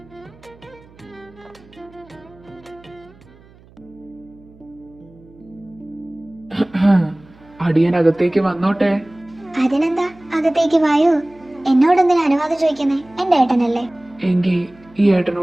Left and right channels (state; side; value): noise; right; hum, 26 dB below the sound